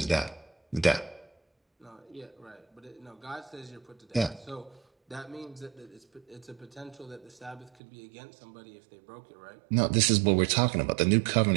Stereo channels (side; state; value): left; drops out; at 7.7 s